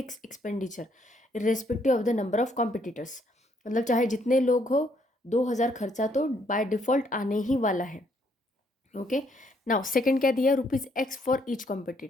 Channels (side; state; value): both; normal; correlation 0.70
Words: expenditure irrespective of the number of competitors. मतलब चाहे जितने लोग हो, 2000 खर्चा तो बाय डिफॉल्ट आने ही वाला है, ओके। नाउ सेकंड क्या दिया, ₹X फॉर ईच